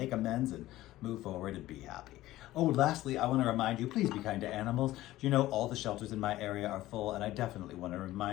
amends and move forward and be happy. Oh, lastly, I want to remind you, please be kind to animals. You know, all the shelters in my area are full, and I definitely want to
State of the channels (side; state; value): right; quieter; 16.0 dB